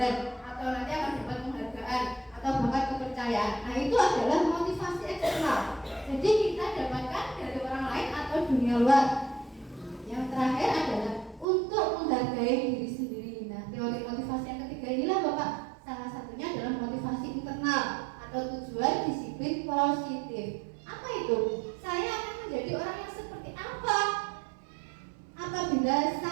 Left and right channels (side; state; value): left; drops out; at 11.5 s